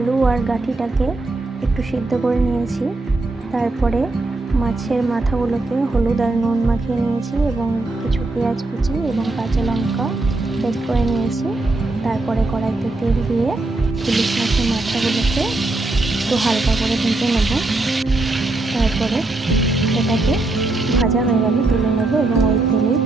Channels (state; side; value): quieter; left; 3.0 dB